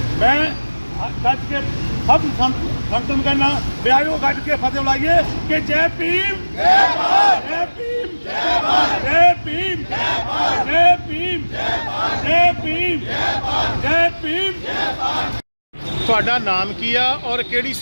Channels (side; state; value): both; inverted; correlation -1.00